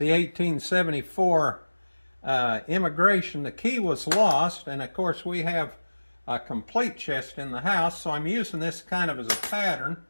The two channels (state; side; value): inverted; both; correlation -1.00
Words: 1874 immigration. The key was lost, and of course we have a complete chest in the house, so I'm using this kind of as a pattern.